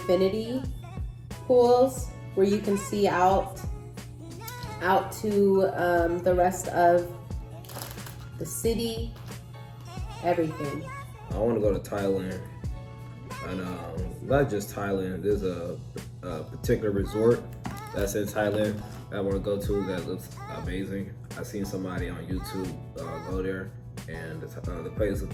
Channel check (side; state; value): both; identical; correlation 1.00